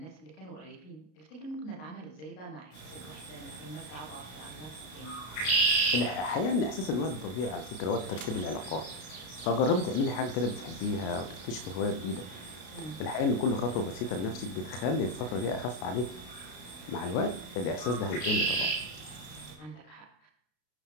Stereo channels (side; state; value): right; late; 33 ms